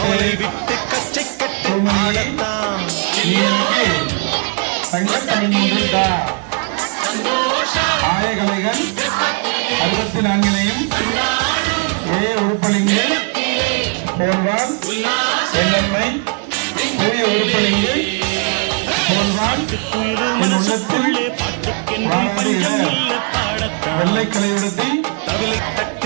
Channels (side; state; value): left; quieter; 39.3 dB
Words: விட்டு கச்சை கட்டு ஆடத்தான் ஆயகலைகள் 64 உறுப்பலிங்கு பெயர்கள் எண்ணெய் புதிய உறுப்பலிங்கு பாட்டுக்குயிரு மனசுக்குள்ளே பாட்டுக்கென்றும் பஞ்சம் இல்ல பாடத்தான் வெள்ளைக்கலையுடத்தில் தவிலை